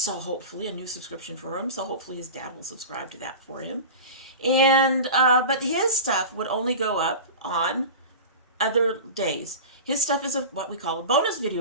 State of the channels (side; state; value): both; inverted; correlation -0.32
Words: hopefully a new subscription for him. So hopefully his dad will subscribe to that for him. And, but his stuff would only go up on other days. His stuff is what we call a bonus